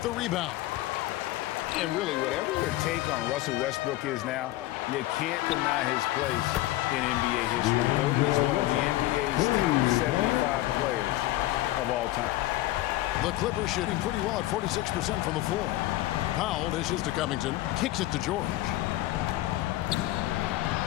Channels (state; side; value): quieter; right; 16.5 dB